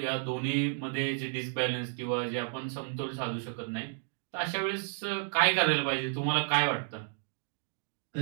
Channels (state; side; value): silent; left; digital silence